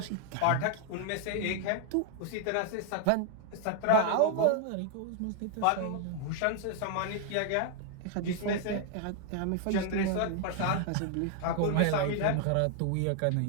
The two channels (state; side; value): different; both; correlation 0.00